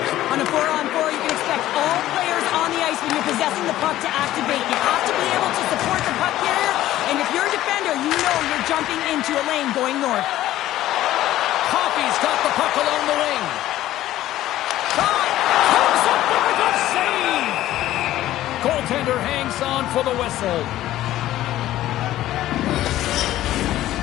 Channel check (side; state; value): right; quieter; 14.2 dB